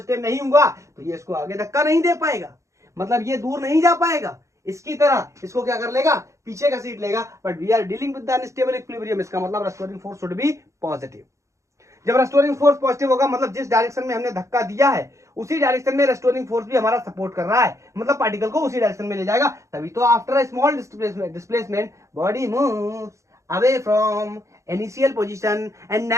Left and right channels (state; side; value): late; left; 0.15 ms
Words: नहीं हुआ तो ये इसको आगे धक्का नहीं दे पाएगा, मतलब ये दूर नहीं जा पाएगा, इसकी तरह इसको क्या कर लेगा? पीछे का सीट लेगा। But we are dealing with the unstable equilibrium, इसका मतलब restoring force should be positive. जब रेस्टोरिंग फोर्स पॉजिटिव होगा मतलब जिस डायरेक्शन में हमने धक्का दिया है उसी डायरेक्शन में रेस्टोरिंग फोर्स भी हमारा सपोर्ट कर रहा है, मतलब पार्टिकल को उसी डायरेक्शन में ले जाएगा। तभी तो after a small displacement body moves away from initial position and